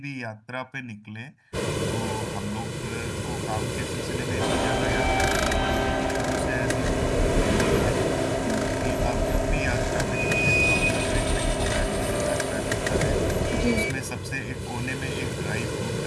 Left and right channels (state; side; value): identical; both; correlation 1.00